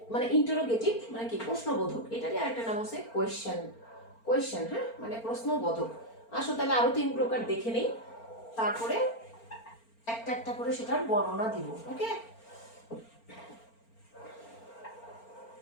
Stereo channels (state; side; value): late; right; 4.4 ms